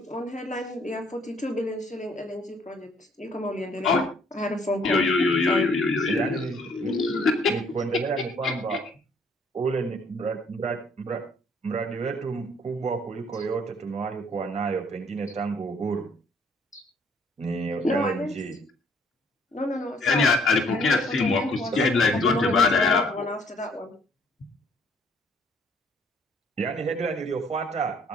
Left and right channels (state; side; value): normal; both; correlation 0.62